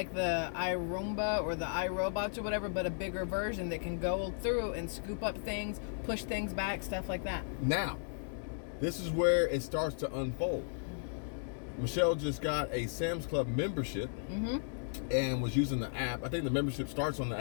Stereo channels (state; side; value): silent; right; digital silence